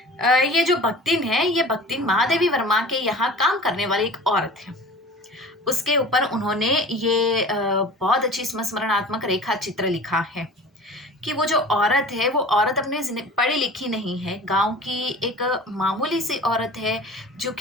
ये जो बख्तिन है, ये बख्तिन महादेवी वर्मा के यहाँ काम करने वाली एक औरत है, उसके ऊपर उन्होंने ये बहुत अच्छी स्मरणात्मक रेखा चित्र लिखा है कि वो जो औरत है वो औरत अपने पढ़ी लिखी नहीं है, गांव की एक मामूली सी औरत है जो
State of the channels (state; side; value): normal; both; correlation 0.40